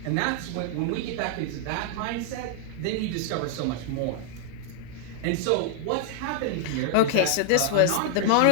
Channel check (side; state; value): both; different; correlation -0.01